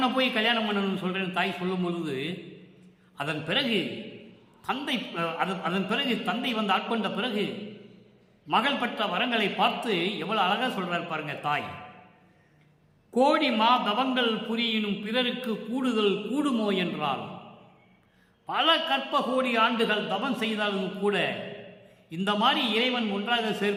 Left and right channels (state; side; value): identical; both; correlation 1.00